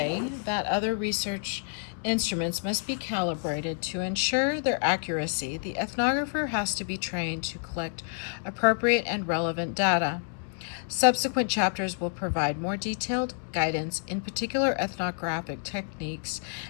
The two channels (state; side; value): silent; right; 59 dB below the other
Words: that other research instruments must be calibrated to ensure their accuracy, the ethnographer has to be trained to collect appropriate and relevant data. Subsequent chapters will provide more detailed guidance in particular ethnographic techniques